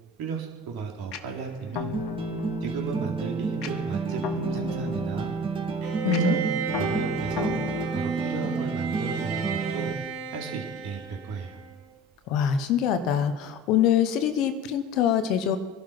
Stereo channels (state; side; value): normal; both; correlation 0.39